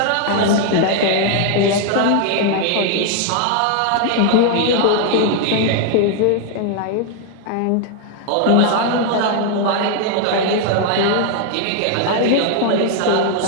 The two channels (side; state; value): both; different; correlation 0.00